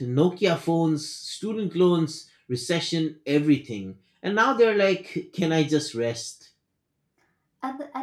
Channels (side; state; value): both; identical; correlation 1.00